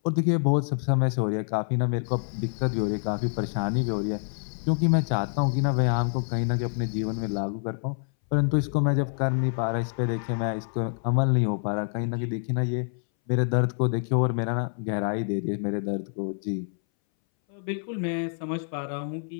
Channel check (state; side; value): silent; right; 60 dB below the other